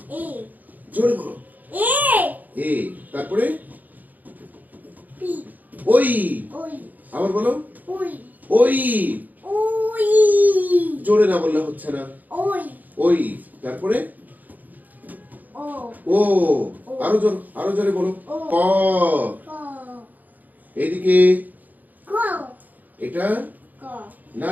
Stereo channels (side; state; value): left; late; 0.082 ms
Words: জোরে বলো। এ। তারপরে ওই। আবার বলো। ওই। জোরে না বললে হচ্ছে না। ওই। তারপরে ও। আরো জোরে বলো। ক। এইদিকে এটা না,